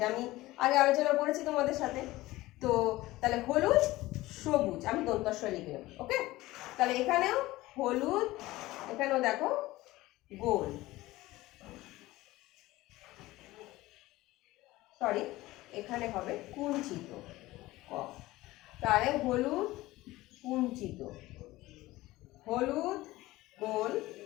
আমি আগে আলোচনা করেছি তোমাদের সাথে। তো তাহলে হলুদ সবুজ, আমি দন্তস্ব লিখে নেব, ওকে? তাহলে এখানেও হলুদ, এখানেও দেখো গোল, সরি এখানে হবে কুঞ্চিত ক। তাহলে হলুদ কুঞ্চিত, হলুদ গোল,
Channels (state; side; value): quieter; right; 18.1 dB